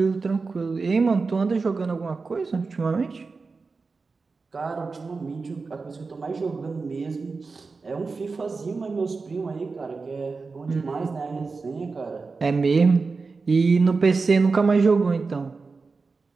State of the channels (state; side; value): quieter; left; 4.3 dB